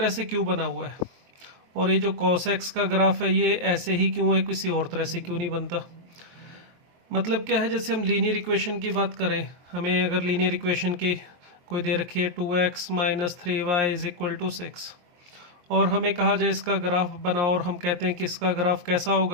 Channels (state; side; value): late; left; 23 ms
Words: से क्यों बना हुआ है, और ये जो कॉस एक्स का ग्राफ है ये ऐसे ही क्यों है, किसी और तरह से क्यों नहीं बनता। मतलब क्या है, जैसे हम लीनियर इक्वेशन की बात करें, हमें अगर लीनियर इक्वेशन की कोई दे रखी है 2x minus 3y is equal to 6, और हमें कहा जाए इसका ग्राफ बनाओ, और हम कहते हैं कि इसका ग्राफ कैसा